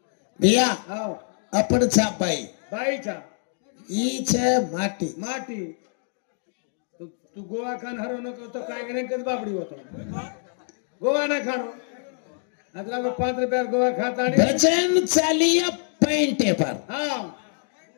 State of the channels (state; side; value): silent; right; 62 dB below the other